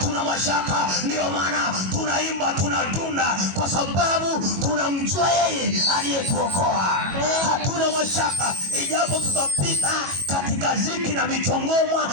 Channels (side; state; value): left; late; 22 ms